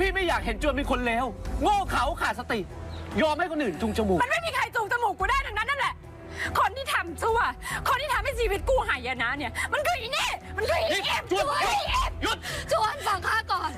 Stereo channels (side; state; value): both; identical; correlation 1.00